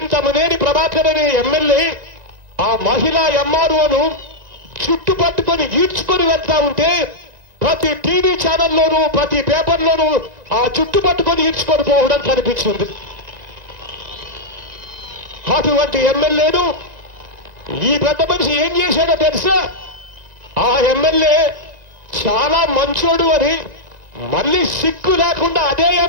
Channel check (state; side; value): late; left; 1.9 ms